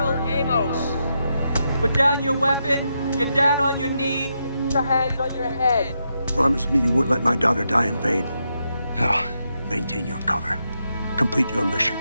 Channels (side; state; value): both; inverted; correlation -0.83